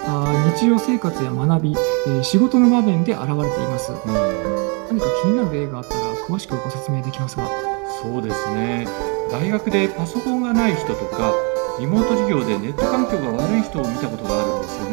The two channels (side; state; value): left; quieter; 34.6 dB